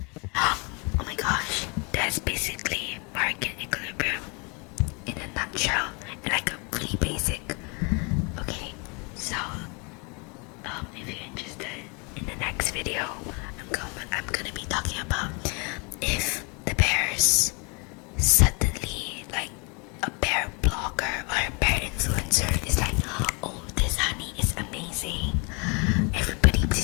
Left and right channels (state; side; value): quieter; right; 32.0 dB